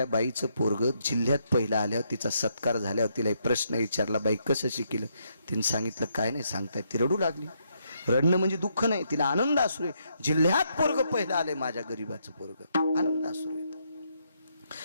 बाईचं पोरग जिल्ह्यात पहिला आल्यावर तिचा सत्कार झाल्यावर तिला एक प्रश्न विचारला बाई कसं शिकलं. तिने सांगितलं काय नाही सांगताय. ती रडू लागली. रडणं म्हणजे दुःख नाही तिला आनंद अश्रू आहे. जिल्ह्यात पोरग पहिला आले माझ्या गरीबाचं पोरग. आनंद अश्रू येत.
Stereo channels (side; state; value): both; inverted; correlation -0.76